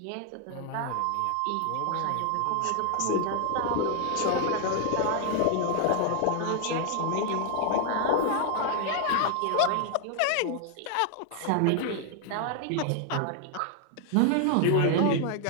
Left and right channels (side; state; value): both; different; correlation 0.00